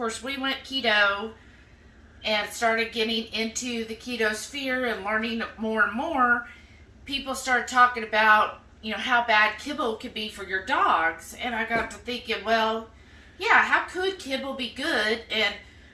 we went keto and started getting into the keto sphere and learning more and more, people started talking about how bad kibble could be for your dogs, and I got to thinking, well, yeah, how could kibble be good? And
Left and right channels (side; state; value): both; identical; correlation 1.00